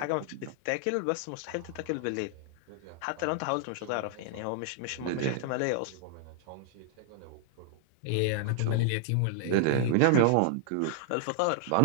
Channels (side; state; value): both; different; correlation -0.01